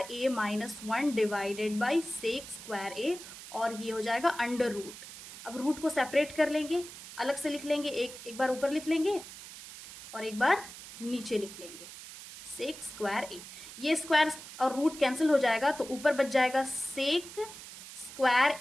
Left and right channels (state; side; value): noise; right; hiss, 14 dB below the sound